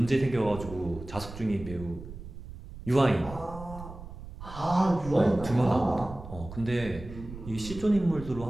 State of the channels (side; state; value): right; noise; rumble, 13 dB below the sound